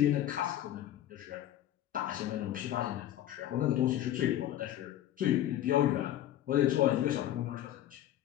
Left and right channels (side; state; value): right; quieter; 12.5 dB